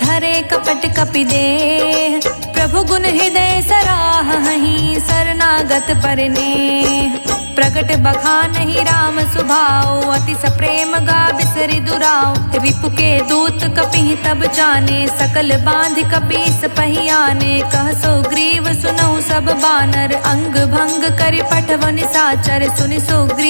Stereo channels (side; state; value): both; inverted; correlation -1.00